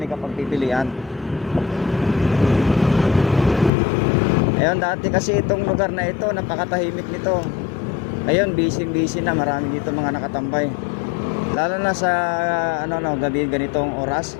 ka pagpipilian. Ayun, dati kasi itong lugar na ito, napakatahimik nito. Ngayon, busy na. Marami dito mga nakatambay. Lalo na sa gabi ganitong oras.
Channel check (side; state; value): right; drops out; at 3.7 s